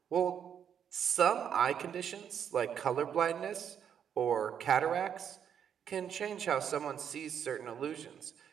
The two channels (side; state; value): left; quieter; 8.4 dB